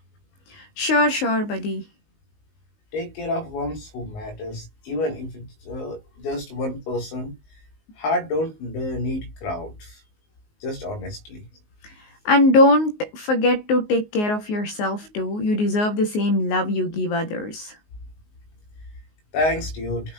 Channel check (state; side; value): late; right; 19 ms